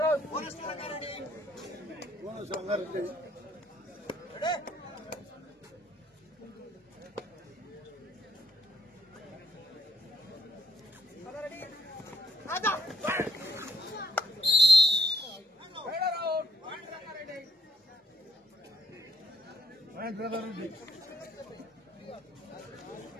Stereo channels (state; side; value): normal; both; correlation 0.68